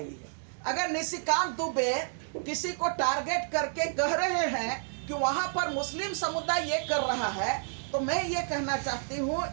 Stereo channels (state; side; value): silent; left; digital silence